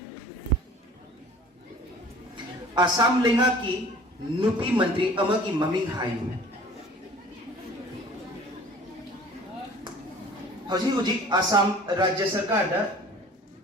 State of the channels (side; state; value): both; normal; correlation 0.47